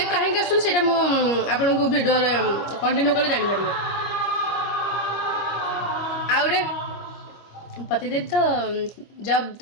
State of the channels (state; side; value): late; right; 25 ms